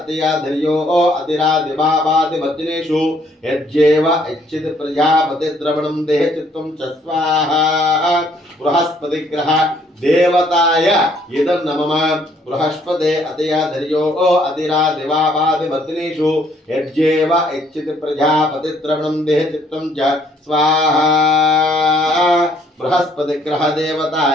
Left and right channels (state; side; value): normal; both; correlation 0.65